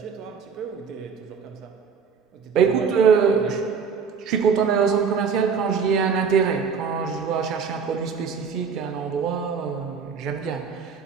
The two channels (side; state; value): left; quieter; 6.0 dB